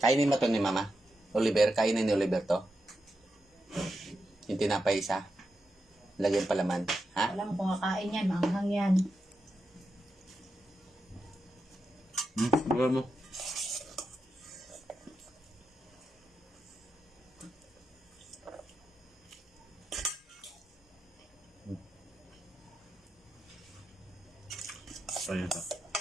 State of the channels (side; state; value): both; normal; correlation 0.87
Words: Kainin mo to ni Mama. Oliver, kainin ni Oliver to. Yung tinapay isa. Lagyan palaman. Ha? Alam ko kakain yan, maanghang yan. Buka mo. Ayan to.